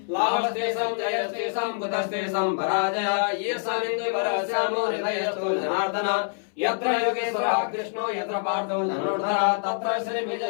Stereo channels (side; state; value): right; silent; 61 dB below the other